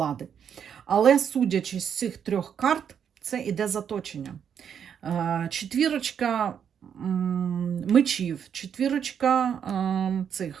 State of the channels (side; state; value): left; quieter; 8.0 dB